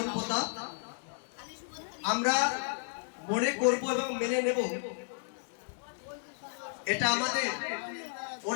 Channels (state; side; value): silent; right; digital silence